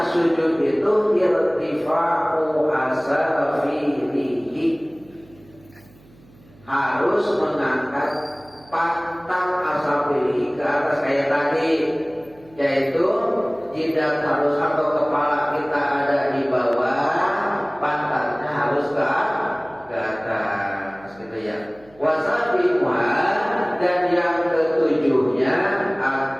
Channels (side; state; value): right; noise; hum, 26 dB below the sound